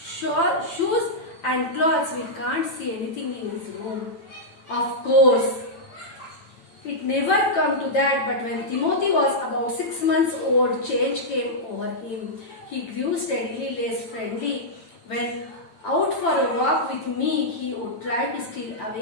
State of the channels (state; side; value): late; right; 9.0 ms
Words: shoes and clothes, we can't see anything in his room. Of course, it never come to that, but when Timothy was about 6 months old, change came over him. He grew steadily less friendly. When out for a walk with me, he would try to steal